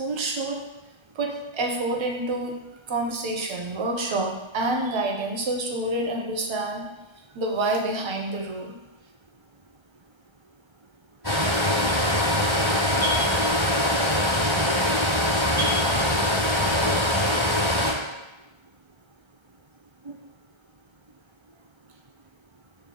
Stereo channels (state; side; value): late; left; 1.3 ms